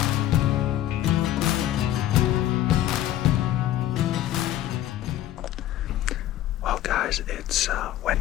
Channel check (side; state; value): right; quieter; 12.9 dB